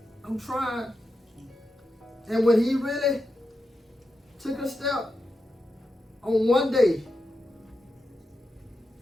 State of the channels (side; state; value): both; normal; correlation 0.88